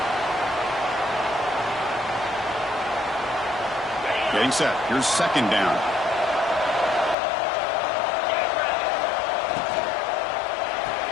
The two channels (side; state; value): right; drops out; at 7.2 s